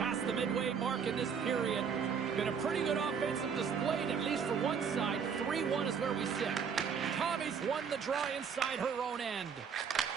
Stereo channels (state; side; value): quieter; left; 6.6 dB